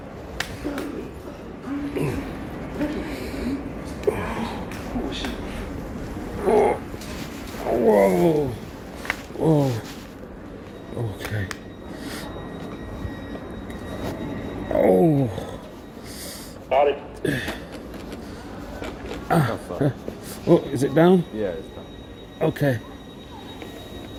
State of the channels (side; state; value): both; identical; correlation 1.00